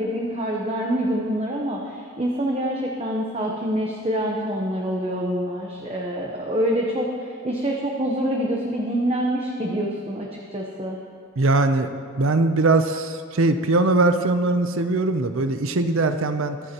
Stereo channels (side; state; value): both; normal; correlation 0.42